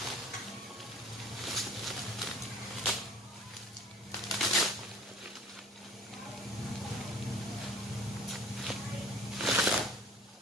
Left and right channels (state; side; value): normal; both; correlation 0.48